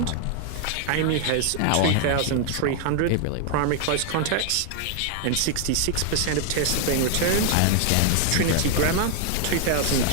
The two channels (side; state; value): both; different; correlation 0.00